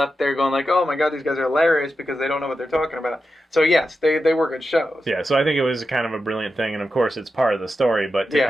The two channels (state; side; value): normal; both; correlation 0.90